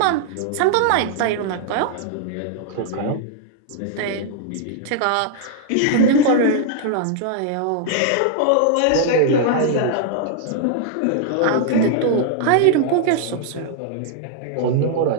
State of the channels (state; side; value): different; both; correlation 0.00